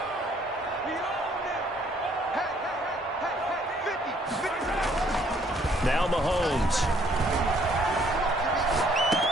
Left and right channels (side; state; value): both; normal; correlation 0.64